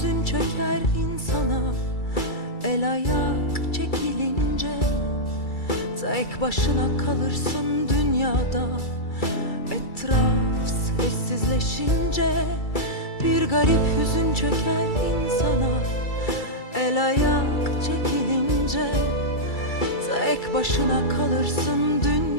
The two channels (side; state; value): right; late; 2.3 ms